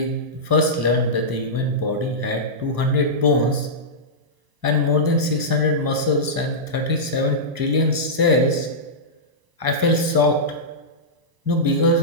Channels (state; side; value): late; left; 1.0 ms